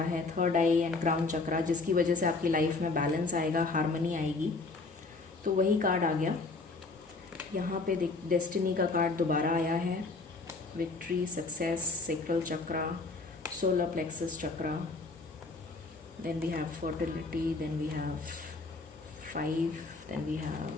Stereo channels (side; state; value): right; quieter; 3.7 dB